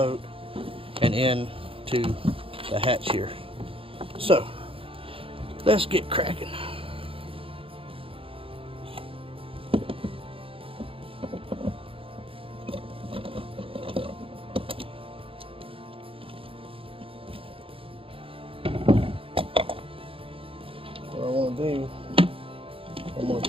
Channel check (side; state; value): left; late; 0.27 ms